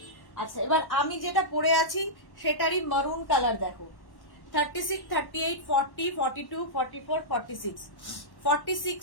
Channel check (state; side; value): late; right; 1.1 ms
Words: আচ্ছা, এবার আমি যেটা পরে আছি সেটারই মারুন কালার দেখো। 36, 38, 40, 42, 44, 46,